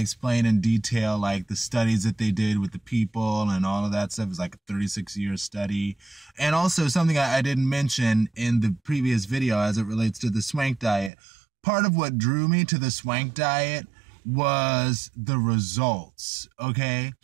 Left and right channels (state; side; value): drops out; left; at 11.1 s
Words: explain in detail like the studies that they did with the people and all of that stuff. It's like a 36-year study. And also something I didn't mention in the previous video as it relates to the swank diet. Part of what drew me to the swank diet was the results. Okay.